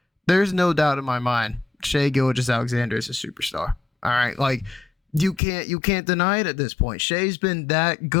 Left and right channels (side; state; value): right; drops out; at 5.4 s